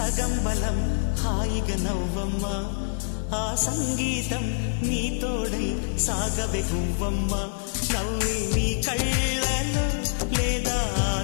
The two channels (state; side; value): silent; right; digital silence